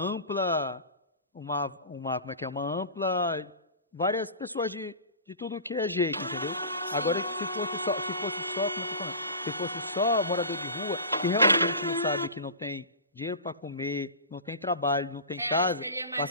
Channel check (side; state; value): both; inverted; correlation -0.34